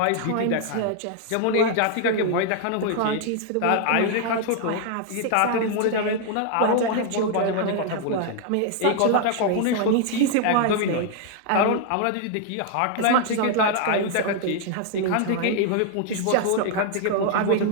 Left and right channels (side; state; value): both; different; correlation 0.00